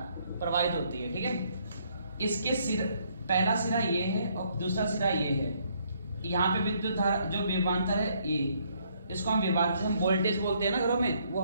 प्रवाहित होती है। ठीक है, इसके सिर, पहला सिरा ये है और दूसरा सिरा ये है। यहाँ पे विद्युत धारा जो विभवांतर है ये, इसको हम विभवांतर, हम वोल्टेज बोलते हैं ना घरों में, वो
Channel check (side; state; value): both; inverted; correlation -0.69